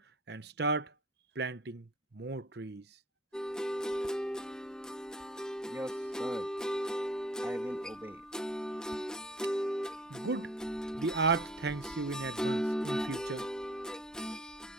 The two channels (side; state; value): both; normal; correlation 0.51